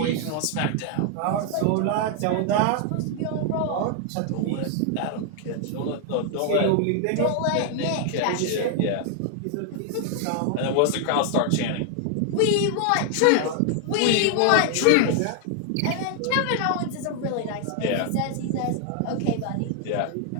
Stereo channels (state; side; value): different; both; correlation 0.00